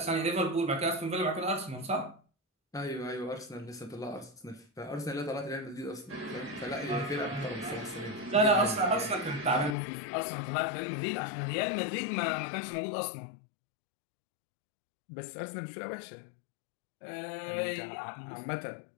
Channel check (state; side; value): drops out; right; at 9.8 s